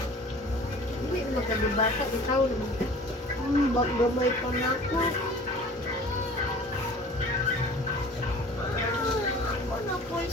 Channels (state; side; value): normal; both; correlation 0.45